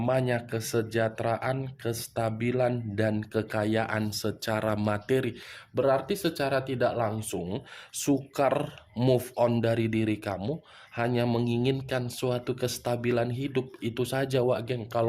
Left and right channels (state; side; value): identical; both; correlation 1.00